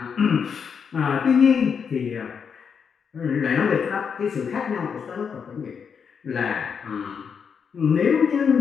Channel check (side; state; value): right; quieter; 6.6 dB